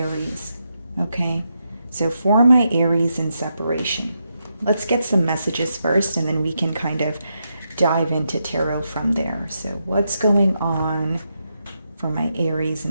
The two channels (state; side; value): inverted; both; correlation -0.83